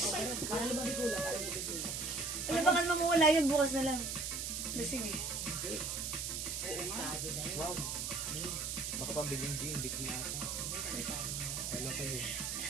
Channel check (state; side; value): noise; right; hiss, 2 dB below the sound